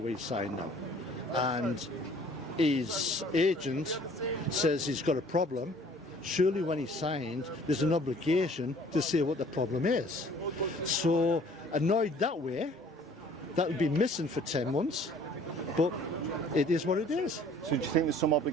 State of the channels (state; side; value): normal; both; correlation 0.54